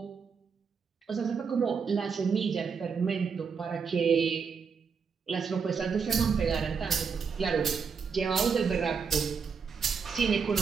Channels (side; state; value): left; quieter; 5.9 dB